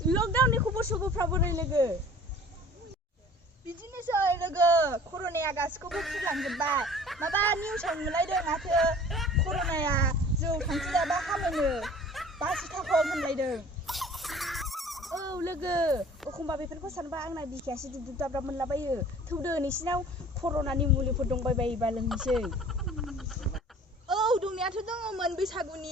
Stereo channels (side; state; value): both; normal; correlation 0.47